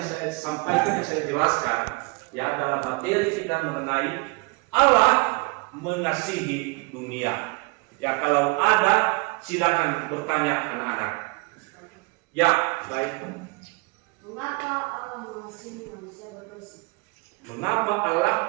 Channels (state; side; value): quieter; left; 28.3 dB